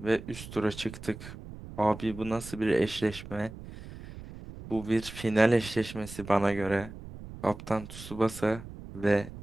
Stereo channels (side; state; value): right; noise; rumble, 13 dB below the sound